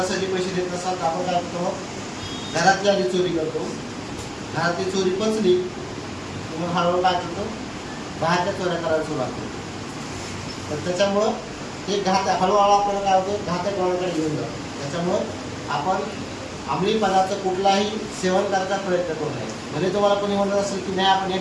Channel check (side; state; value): both; identical; correlation 1.00